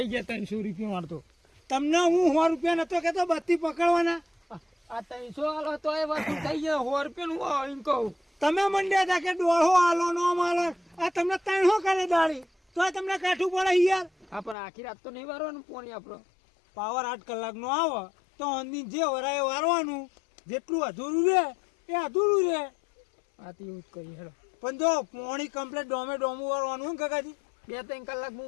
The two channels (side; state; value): right; drops out; at 14.6 s